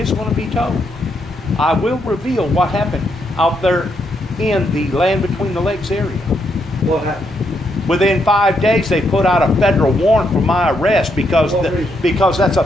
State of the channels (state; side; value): normal; both; correlation 0.78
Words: going to be told. I will reveal what happened out there in the Land Between the Lakes area." What happened? Within 5 days, they put out a federal warrant for my arrest because that's a